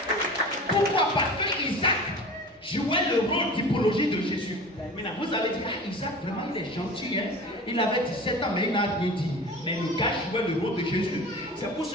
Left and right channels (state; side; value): normal; both; correlation 0.37